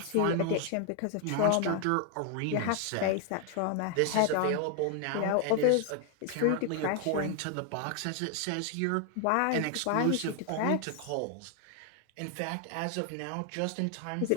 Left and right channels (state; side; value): different; both; correlation 0.00